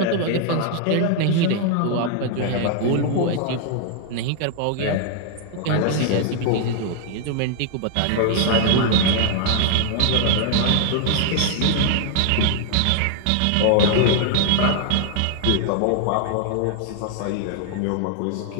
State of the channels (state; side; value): different; both; correlation 0.00